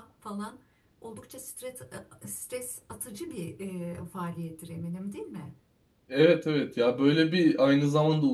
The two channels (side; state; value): both; identical; correlation 1.00